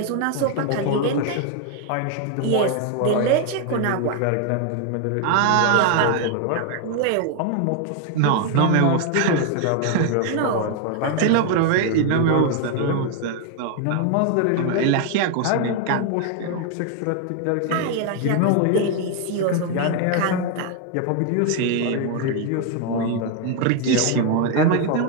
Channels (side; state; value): both; different; correlation 0.01